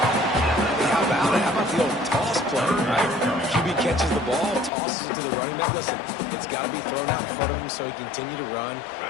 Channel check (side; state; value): right; drops out; at 4.7 s